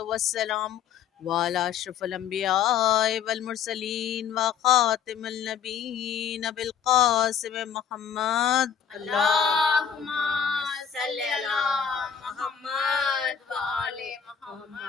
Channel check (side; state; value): right; quieter; 7.8 dB